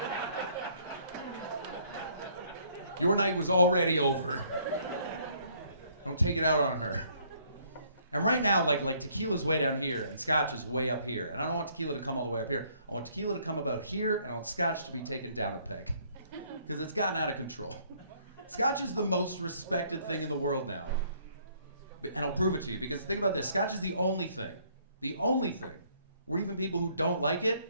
Your night was already over. Don't take it out on her. And right now, like tequila's way down here and scotch is way up here. And I don't want tequila to come all the way up here. I want tequila to come about here, and I want scotch to be taken down a peg. Because it's gotten out of control. Scotch is the most respected thing in the world now. And I'll prove it to you, because think about this. Scotch is the only thing where even people who don't like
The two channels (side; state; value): both; inverted; correlation -0.64